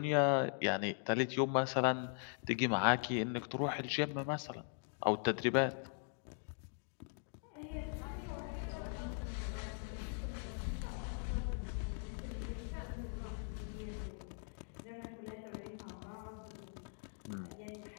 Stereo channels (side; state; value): right; silent; 51 dB below the other